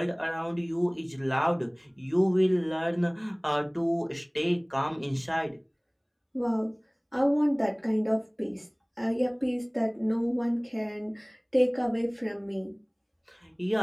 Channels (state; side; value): identical; both; correlation 1.00